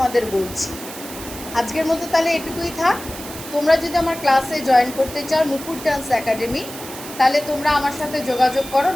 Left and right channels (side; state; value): right; noise; hiss, 12 dB below the sound